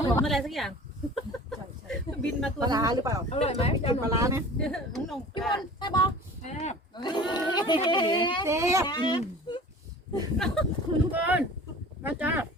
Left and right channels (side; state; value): both; normal; correlation 0.42